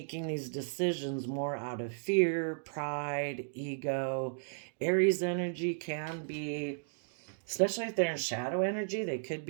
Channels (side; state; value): left; silent; digital silence